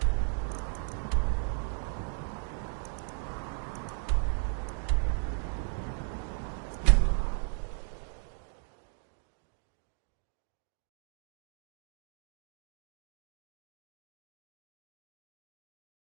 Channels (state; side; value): silent; left; 54 dB below the other